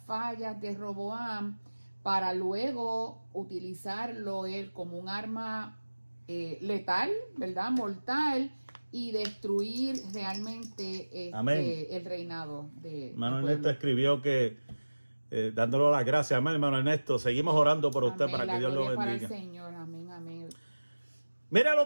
fallas de Roboam para luego utilizarlo él como un arma letal, ¿verdad? Mortal, y destruir realmente el reinado de hermano Ernesto escribió que dándole las gracias, amén, hermano Ernesto, seguimos orando por usted, amén, para que Dios lo bendiga. Para el Señor, amén, amén. Mira lo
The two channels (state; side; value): inverted; both; correlation -1.00